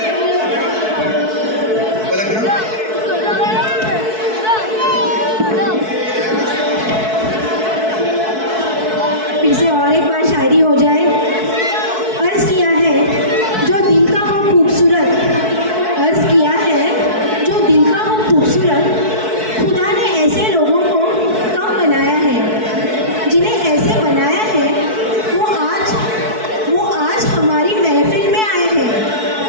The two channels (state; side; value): late; left; 4.6 ms